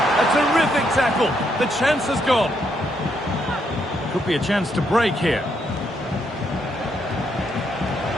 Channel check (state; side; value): normal; both; correlation 0.76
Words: A terrific tackle. The chance has gone. Could be a chance to break here.